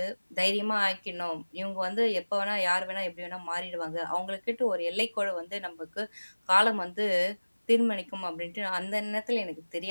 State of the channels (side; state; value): both; inverted; correlation -1.00